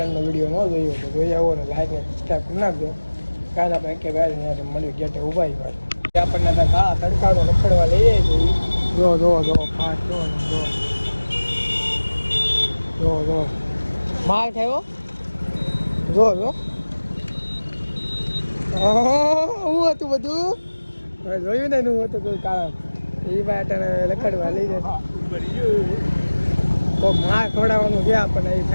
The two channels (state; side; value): inverted; both; correlation -1.00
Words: વિડીયો ન જોયો તો જોઈ આવો ને લાઈક ને સબસ્ક્રાઈબ કરી નાખજો કાલે આપણે કે ભાઈ અહીંયા મળ્યું ગેટે ઊભા ભાઈ આપણને આ તડકાનો રખડવા લઈએ છીએ જો ફાસ્ટ જો માલ થયો જો હું હતું બધું જોયું ને હું હતું કોઈ કારણ એ બાટાને લખડવા લઈ જાય તો માલ ખવડાવવાનું ગયા આપણને એ